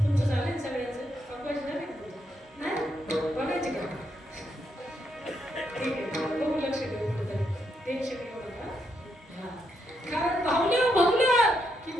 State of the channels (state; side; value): normal; both; correlation 0.79